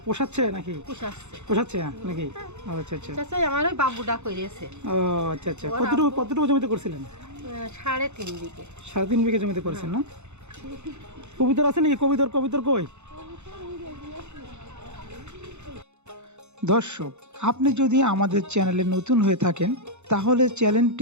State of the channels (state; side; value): late; left; 0.83 ms